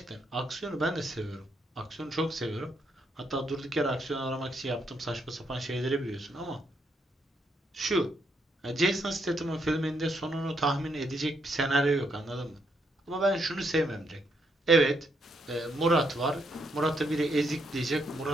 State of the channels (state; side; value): normal; both; correlation 0.76